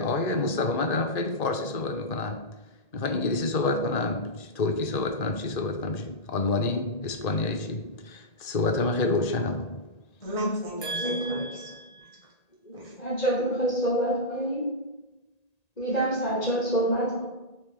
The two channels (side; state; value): right; late; 1.9 ms